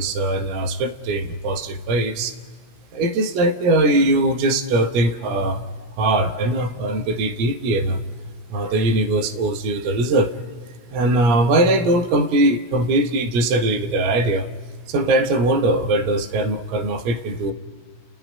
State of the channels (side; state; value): left; late; 17 ms